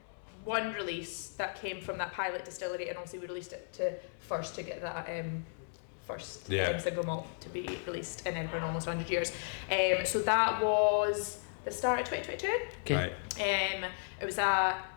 one release that came from that pilot distillery, and obviously we released it to get that first single malt to be released in Edinburgh in almost 100 years. So that was the start of 2022. Right. It was a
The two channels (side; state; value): right; silent; digital silence